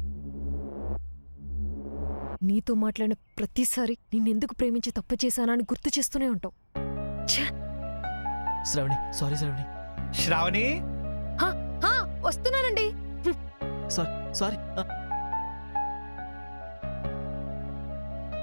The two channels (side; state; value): both; inverted; correlation -1.00